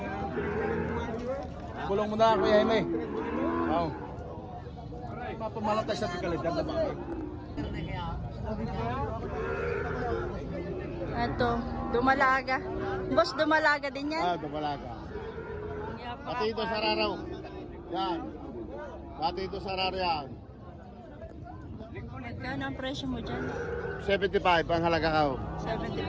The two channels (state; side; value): identical; both; correlation 1.00